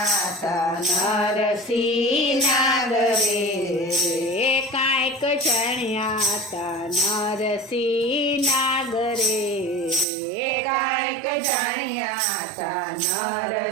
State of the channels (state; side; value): drops out; left; at 10.1 s